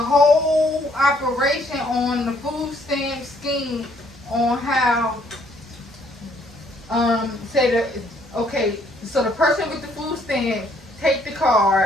operation on the food stamp scheme, on how so the person with the food stamp take the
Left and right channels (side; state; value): both; normal; correlation 0.66